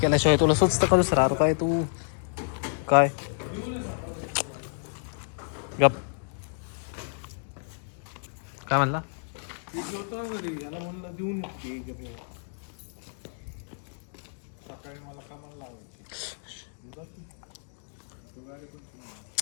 तुला सुचतं करूच राहतो काय तू काय गप काय म्हणला.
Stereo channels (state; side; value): silent; right; digital silence